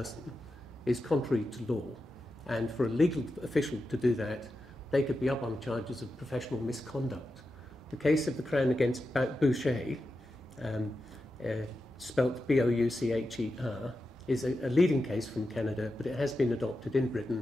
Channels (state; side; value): normal; both; correlation 0.90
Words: is contrary to law. And for a legal official to do that, they could be up on charges of professional misconduct. The case of the Crown against Boucher, spelt Boucher, is a leading case from Canada, but it has been adopted in